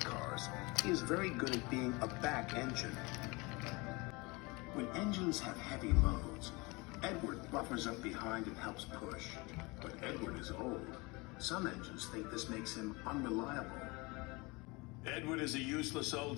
cars, he is very good at being a back engine. When engines have heavy loads, Edward buffers up behind and helps push. But Edward is old. Some engines think this makes him unreliable. Edward is a useless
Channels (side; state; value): right; quieter; 25.6 dB